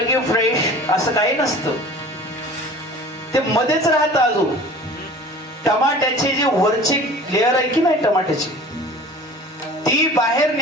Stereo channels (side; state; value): both; normal; correlation 0.43